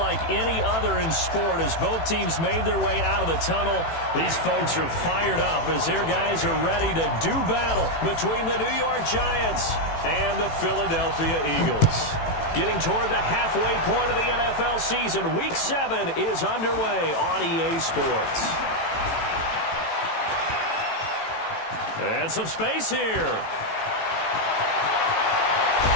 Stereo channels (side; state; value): right; late; 18 ms